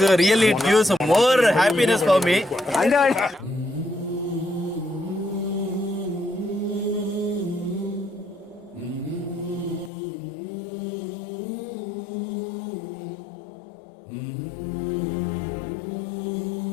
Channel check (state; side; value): drops out; right; at 9.9 s